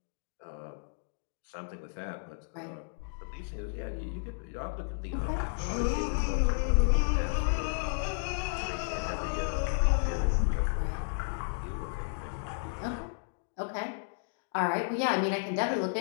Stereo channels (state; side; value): silent; right; digital silence